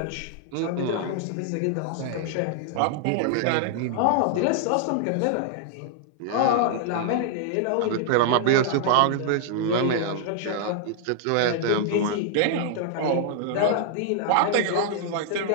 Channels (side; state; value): both; different; correlation -0.01